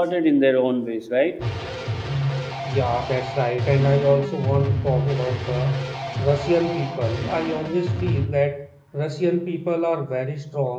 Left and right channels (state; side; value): identical; both; correlation 1.00